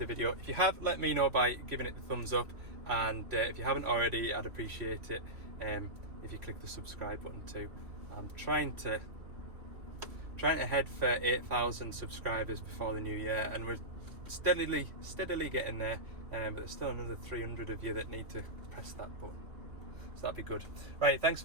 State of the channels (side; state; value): left; late; 2.8 ms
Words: video. If you have, let me know by giving it the thumbs up, and if you haven't already, I'd appreciate it if you click the subscribe button too. I'm trying to head for 8,000 subscribers before the new year, and we're steadily getting there, but there's still another 300 of you that need to press that button, so that'd be good. Right, thanks